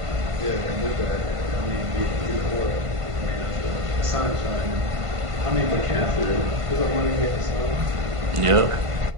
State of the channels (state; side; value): late; left; 1.5 ms